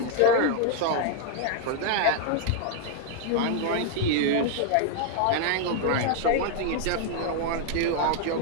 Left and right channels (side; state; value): both; different; correlation 0.00